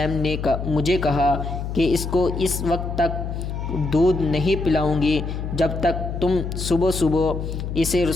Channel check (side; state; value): left; noise; hum, 5 dB below the sound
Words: نے مجھے کہا کہ اس کو اس وقت تک دودھ نہیں پلاؤں گی جب تک تم صبح صبح اسے